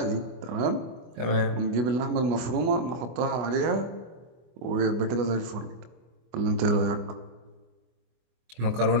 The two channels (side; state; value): left; late; 24 ms